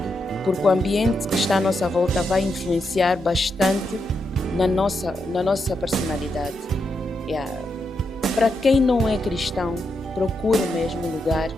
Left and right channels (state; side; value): normal; both; correlation 0.83